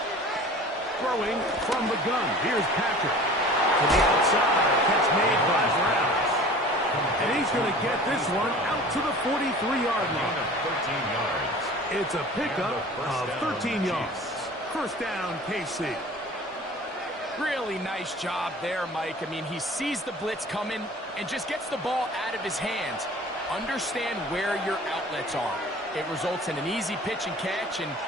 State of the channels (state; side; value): normal; both; correlation 0.43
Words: Throwing from the gun. Here's Patrick. To the outside. Catch made by Brown. And he's going to get this one out to the 43-yard line. 13 yards. It's a pickup of 13 yards. First down, KC. Really nice job there, Mike. I mean, he sees the blitz coming and just gets the ball out of his hands. Understand where your outlets are. It results in an easy pitch and catch and